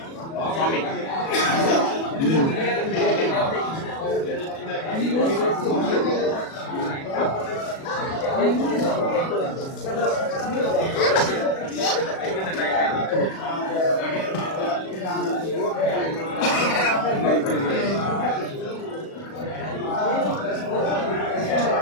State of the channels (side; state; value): right; late; 37 ms